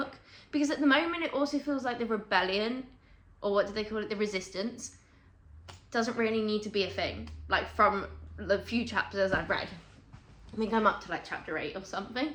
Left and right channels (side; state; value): both; identical; correlation 1.00